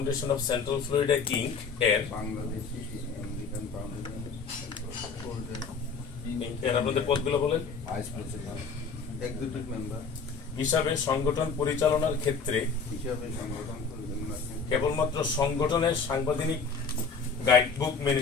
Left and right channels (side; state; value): right; quieter; 5.1 dB